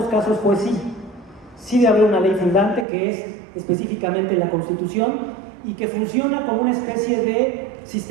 casos fue sí. Sí debe haber una ley fundante, que es específicamente la Constitución, y que funciona como una especie de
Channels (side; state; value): left; drops out; at 2.9 s